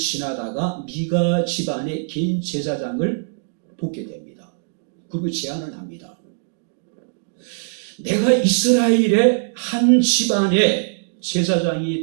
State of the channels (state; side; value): silent; left; digital silence